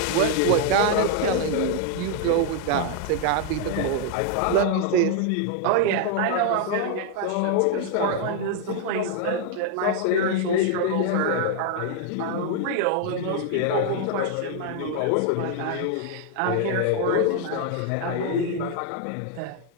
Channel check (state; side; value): different; both; correlation 0.00